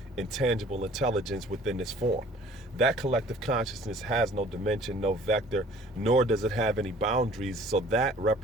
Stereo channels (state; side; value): normal; both; correlation 0.52